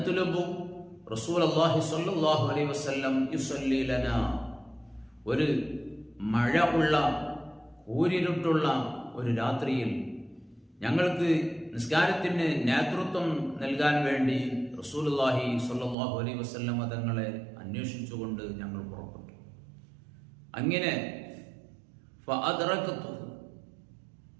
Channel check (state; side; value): drops out; left; at 16.0 s